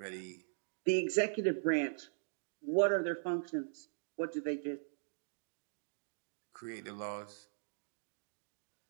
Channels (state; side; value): silent; left; digital silence